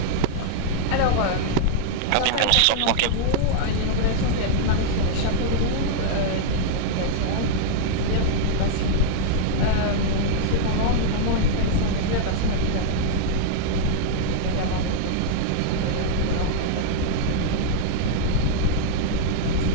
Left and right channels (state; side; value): different; both; correlation -0.01